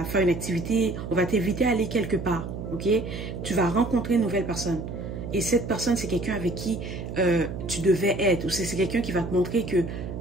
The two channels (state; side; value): noise; right; hum, 7 dB below the sound